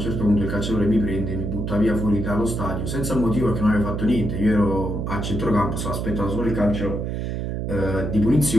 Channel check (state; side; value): noise; right; hum, 3 dB below the sound